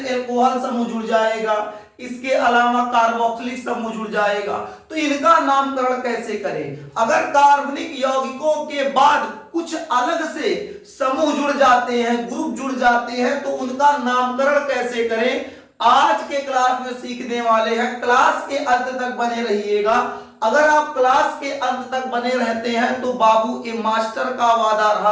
एल्कोहल समूह जुड़ जाएगा, इसके अलावा कार्बोक्सिलिक समूह जुड़ जाएगा, तो इनका नामकरण कैसे करें। अगर कार्बनिक यौगिकों के बाद कुछ अलग से समूह जुड़ जाते हैं, ग्रुप जुड़ जाते हैं, तो उनका नामकरण कैसे करें, आज के क्लास में सीखने वाले हैं। क्लास के अंत तक बने रहिएगा। अगर आप क्लास के अंत तक बने रहते हैं तो बाबू ए मास्टर का वादा रहा,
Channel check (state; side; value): identical; both; correlation 1.00